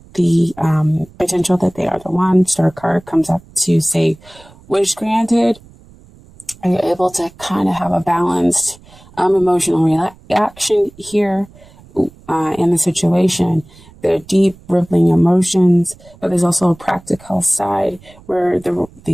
the potential that they are the one. Star card comes up to say, wish granted. Are you able to kind of have a balanced emotional reaction here in the situation? There are deep, rippling emotions, but there's also a practical side where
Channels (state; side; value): noise; right; rumble, 24 dB below the sound